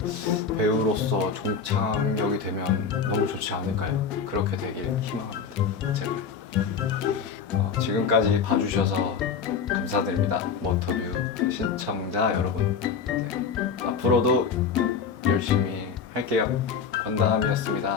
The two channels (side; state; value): right; quieter; 6.0 dB